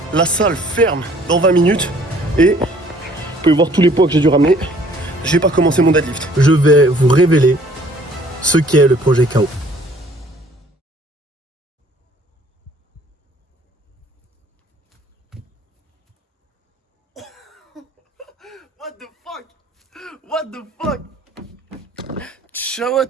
La salle ferme dans 20 minutes. Et vous pouvez voir tous les poids que j'ai dû ramener. J'ai pas commencé mon deadlift. Je vais vous révéler ce qu'est le projet KO. What the fuck? What the fuck? Ciao à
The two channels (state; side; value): normal; both; correlation 0.57